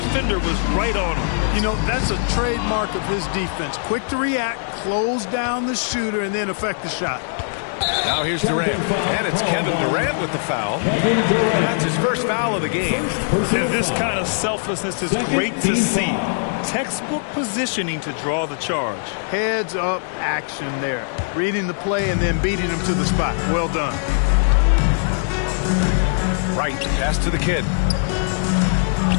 was right on him. That's a trademark of his defense. Quick to react, close down the shooter, and then affect the shot. Now here's Durant. And it's Kevin Durant with the foul. That's his first foul of the game. And this kind of selflessness is great to see. Textbook positioning to draw the charge. Heads up action there. Reading the play and then beating him to the spot. Well done. Right, pass to the Kid.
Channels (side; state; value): right; silent; digital silence